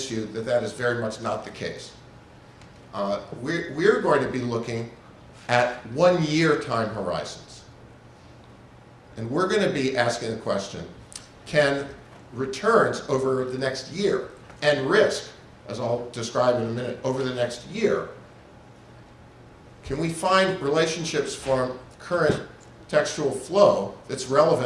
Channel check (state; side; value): identical; both; correlation 1.00